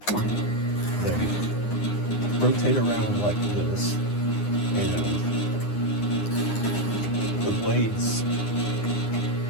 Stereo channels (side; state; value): right; late; 9.8 ms